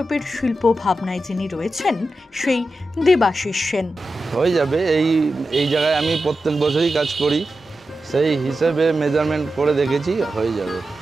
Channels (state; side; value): normal; both; correlation 0.91